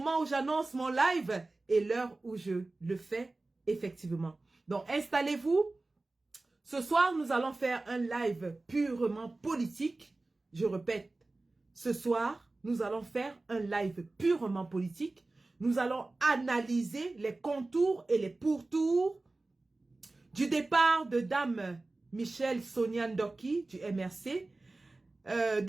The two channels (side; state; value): left; quieter; 3.2 dB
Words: où j'annonce mon live et l'heure où je le fais effectivement. Donc installez-vous. Ce soir, nous allons faire un live purement politique. Je répète, ce soir, nous allons faire un live purement politique. Nous allons analyser les contours et les pourtours du départ de Dame Michelle Sonia Ndoki du MRC.